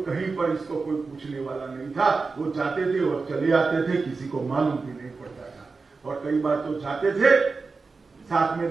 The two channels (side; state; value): left; quieter; 4.3 dB